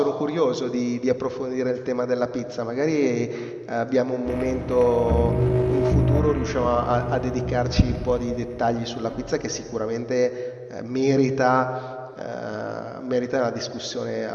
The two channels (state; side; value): identical; both; correlation 1.00